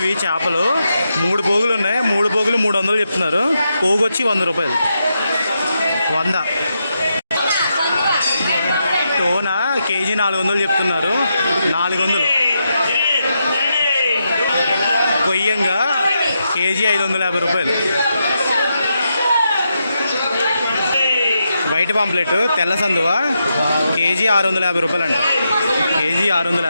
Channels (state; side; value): inverted; both; correlation -0.84